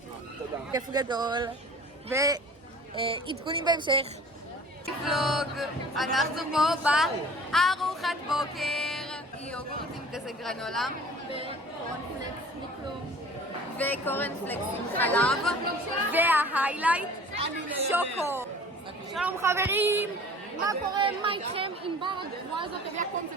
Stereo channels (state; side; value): normal; both; correlation 0.46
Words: כיף גדול. ועדכונים בהמשך. ולוג, אנחנו פה בארוחת בוקר. יוגורטים כזה גרנולה. וקורנפלקס מכלום. וקורנפלקס עם חלב. וההיילייט, שוקו. שלום חברים, מה קורה? מה איתכם? ענבר הגבוהה הזאת הביאה